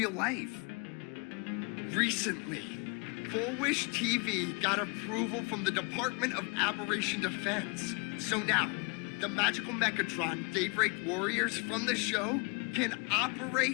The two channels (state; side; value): quieter; right; 31.5 dB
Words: life. Recently, Full Wish TV got approval from the Department of Aberration Defense. So now, the magical Mechatron Daybreak Warriors from the show can